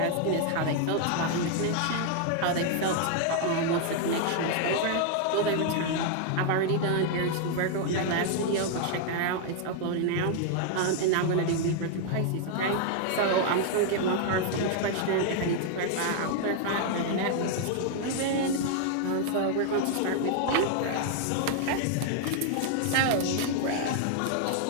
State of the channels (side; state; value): both; different; correlation 0.00